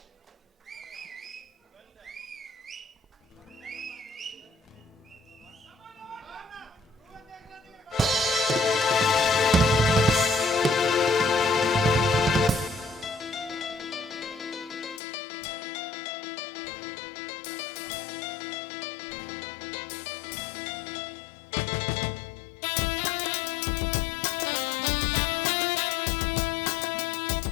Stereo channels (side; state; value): right; drops out; at 15.0 s